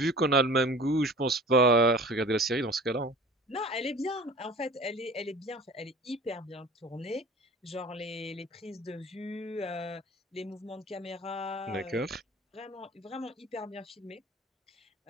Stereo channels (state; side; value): normal; both; correlation 0.43